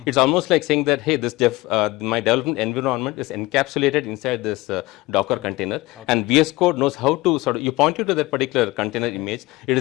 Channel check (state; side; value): quieter; right; 20.2 dB